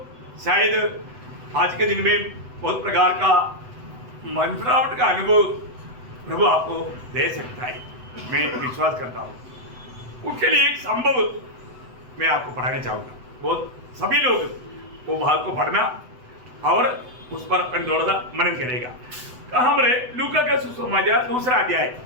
शायद आज के दिन में बहुत प्रकार का मनफरावट का अनुभव प्रभु आपको दे सकता है, मैं विश्वास करता हूँ। उसके लिए एक संभव मैं आपको पढ़ाना चाहूँगा, बहुत सभी लोग वो भाग को पढ़ना और उस पर अपन थोड़ा सा मनन करेगा। कहाँ पर है? लूका का सुसमाचार दूसरा अध्याय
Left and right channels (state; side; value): late; left; 8.0 ms